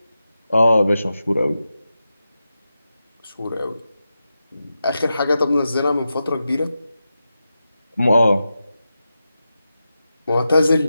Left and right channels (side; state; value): both; inverted; correlation -0.91